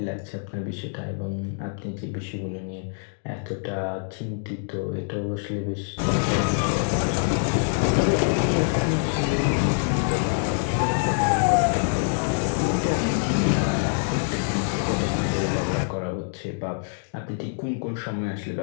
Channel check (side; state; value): right; silent; 62 dB below the other